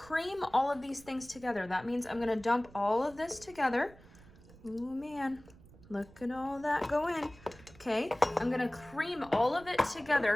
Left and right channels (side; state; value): right; noise; rumble, 22 dB below the sound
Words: all of these things together. That means I'm going to dump all of this together. Oh man, look at all that go in. Okay, I'm going to cream all of it